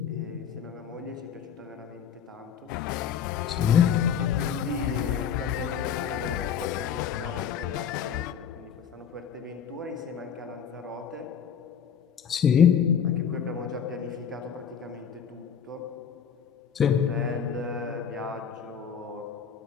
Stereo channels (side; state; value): right; quieter; 7.7 dB